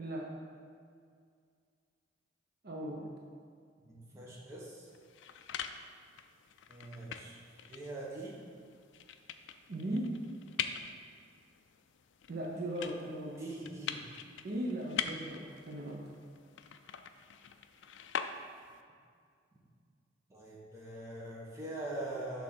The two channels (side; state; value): both; normal; correlation 0.38